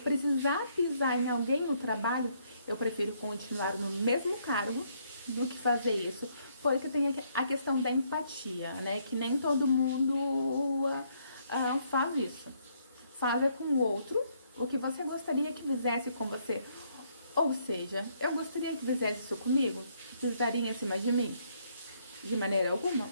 pisar em alguém no trabalho, eu prefiro continuar no mesmo cargo do que fazer isso. Porque tem a questão da empatia, né? Que nem todo mundo faz isso. Faz com o outro o que você gostaria que fizesse com você. Ou seja, eu gostaria que fizesse isso comigo, pisaria em cima de mim? De maneira alguma.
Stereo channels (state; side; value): inverted; both; correlation -0.70